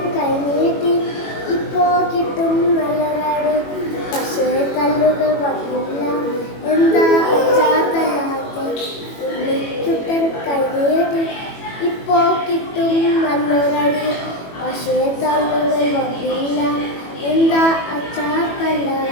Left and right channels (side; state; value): right; late; 21 ms